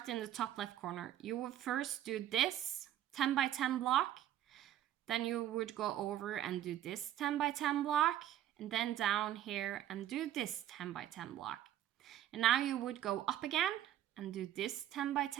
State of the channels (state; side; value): quieter; left; 11.9 dB